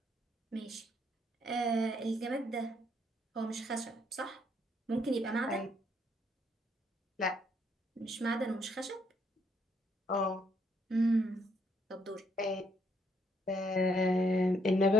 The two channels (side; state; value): both; normal; correlation 0.72